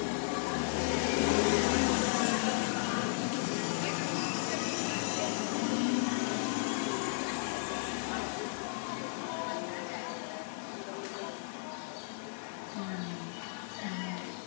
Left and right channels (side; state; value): right; silent; 55 dB below the other